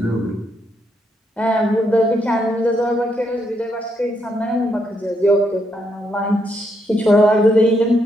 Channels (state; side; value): normal; both; correlation 0.77